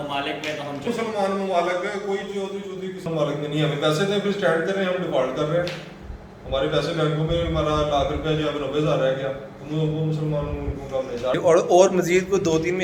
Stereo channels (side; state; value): both; identical; correlation 1.00